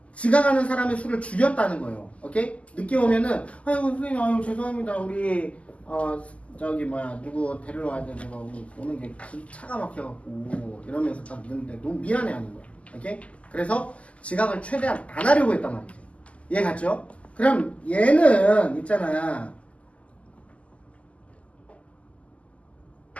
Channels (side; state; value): right; late; 0.064 ms